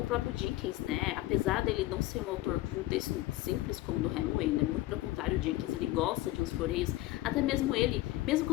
próprio Dickens, né? Apesar dele não ser um autor de um texto simples como o do Hemingway, né? Muito pelo contrário, o Dickens, ele gosta de uns floreios, até mesmo ele, mesmo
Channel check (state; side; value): quieter; right; 16.8 dB